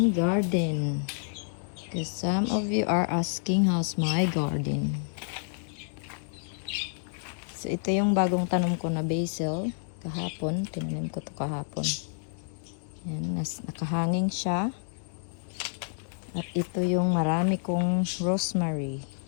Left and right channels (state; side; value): silent; right; digital silence